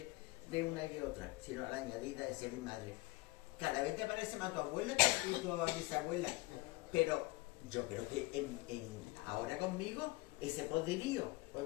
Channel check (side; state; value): right; quieter; 22.0 dB